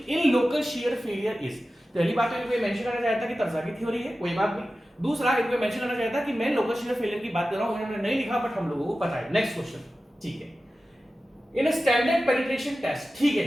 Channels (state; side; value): normal; both; correlation 0.94